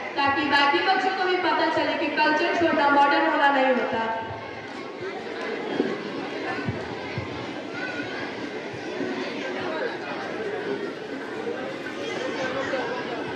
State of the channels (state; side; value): identical; both; correlation 1.00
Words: ताकि बाकी बच्चों को भी पता चले कि कल्चर छोड़ना मॉडर्न होना नहीं होता।